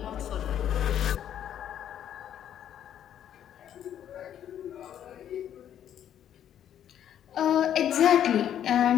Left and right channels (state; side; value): quieter; right; 10.2 dB